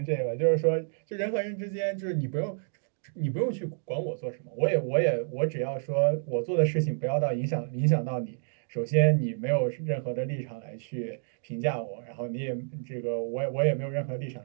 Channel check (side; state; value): left; silent; digital silence